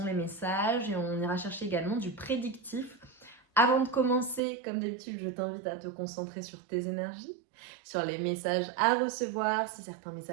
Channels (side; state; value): left; drops out; at 4.4 s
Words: les messages et on ira chercher également du prédictif. Avant de commencer, comme d'habitude, je t'invite à te concentrer sur tes énergies, sur les messages à recevoir. Si certains